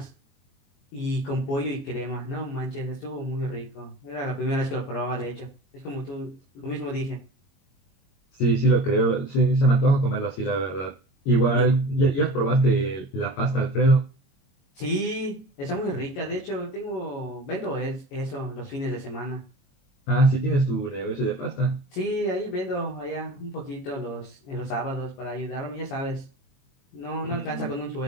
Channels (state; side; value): late; right; 22 ms